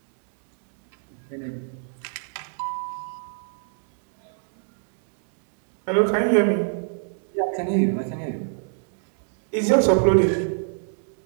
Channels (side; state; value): left; silent; digital silence